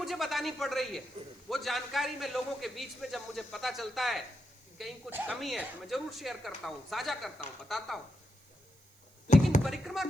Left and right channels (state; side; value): noise; right; hiss, 29 dB below the sound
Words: बतानी पड़ रही है। वो जानकारी में लोगों के बीच में जब मुझे पता चलता है कि कहीं कुछ कमी है तो मैं जरूर शेयर करता हूं, साझा करता हूं, बताता हूं। लेकिन परिक्रमा